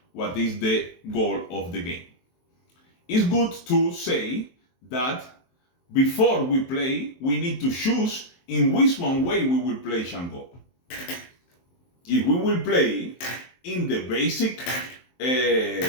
what is the goal of the game. It's good to say that before we play, we need to choose in which one way we will play Xhangó. If we will play in the basic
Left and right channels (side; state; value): right; late; 23 ms